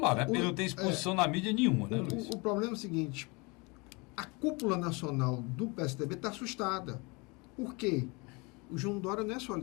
né? Ele não tem exposição na mídia nenhuma, né, Luiz? O problema é o seguinte, a cúpula nacional do PSDB está assustada. Por quê? O João Dória não é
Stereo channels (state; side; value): quieter; right; 28.1 dB